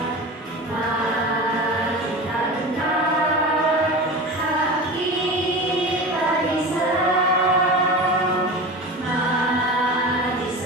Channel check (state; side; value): normal; both; correlation 0.30